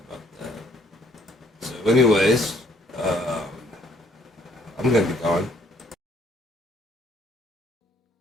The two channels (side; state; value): both; normal; correlation 0.63